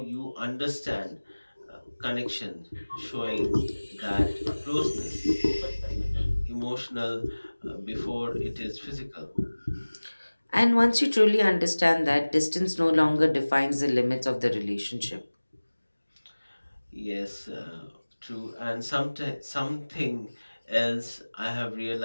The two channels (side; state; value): both; inverted; correlation -1.00